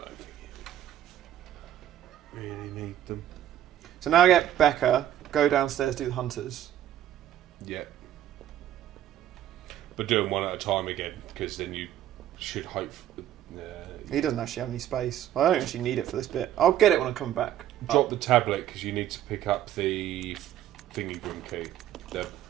don't think you really need them. So now I get Becca, go downstairs, do the hunters. Yeah. But do them one at a time again, because then you should hope. He doesn't actually have any space. I don't actually need it for this bit. I'll get it when I come back. Drop the tablet because you need to pick up the thingy room key, the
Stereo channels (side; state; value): left; quieter; 11.8 dB